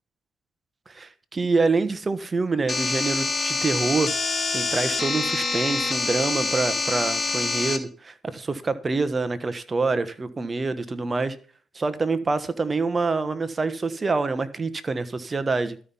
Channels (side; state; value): both; normal; correlation 0.89